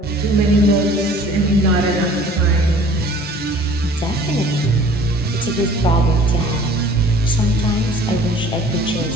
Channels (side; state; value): both; normal; correlation 0.50